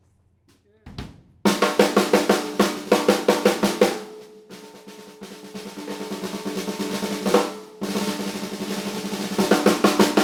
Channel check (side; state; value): both; identical; correlation 1.00